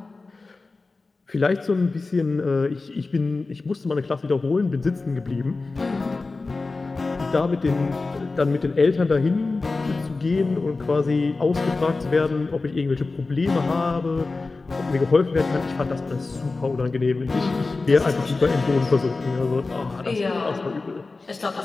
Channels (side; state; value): right; quieter; 3.7 dB